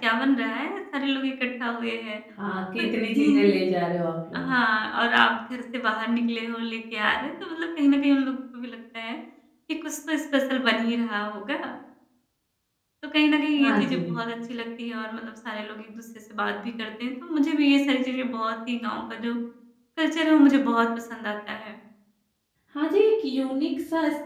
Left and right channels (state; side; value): identical; both; correlation 1.00